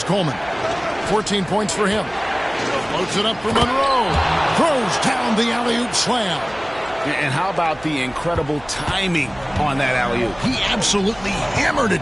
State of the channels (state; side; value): noise; right; hum, 22 dB below the sound